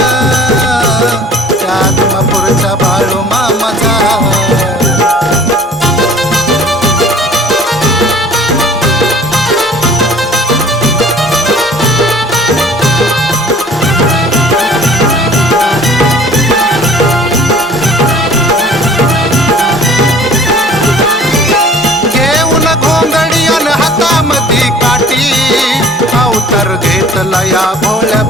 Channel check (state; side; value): normal; both; correlation 0.50